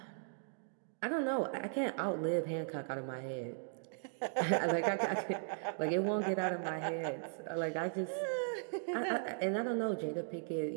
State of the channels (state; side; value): silent; left; digital silence